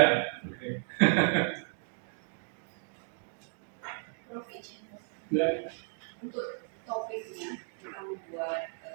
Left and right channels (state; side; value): silent; left; 55 dB below the other